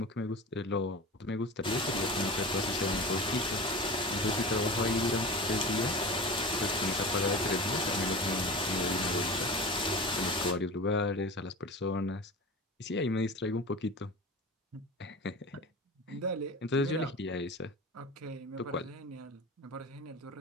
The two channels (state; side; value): normal; both; correlation 0.32